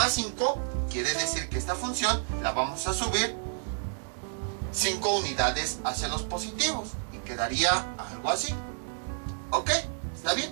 5, quiere decir que esta función la vamos a subir 5 unidades hacia los positivos, y quedaría algo así. ¿Ok? ¿Está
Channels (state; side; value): silent; left; 58 dB below the other